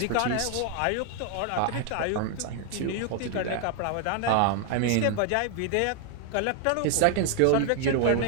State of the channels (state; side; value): different; both; correlation 0.00